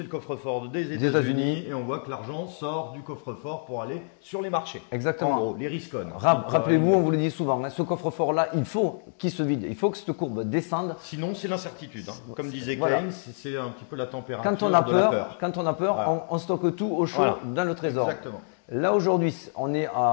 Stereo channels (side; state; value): right; silent; 60 dB below the other